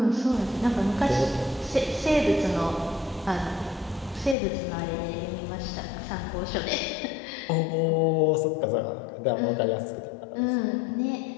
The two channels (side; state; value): right; drops out; at 4.4 s